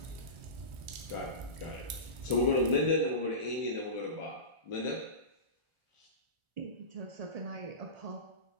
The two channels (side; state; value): left; late; 1.4 ms